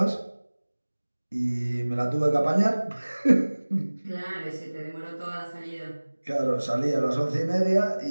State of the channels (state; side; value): inverted; both; correlation -1.00